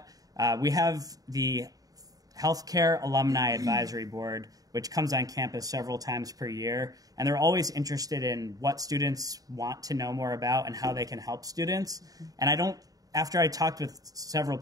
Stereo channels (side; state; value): left; late; 0.18 ms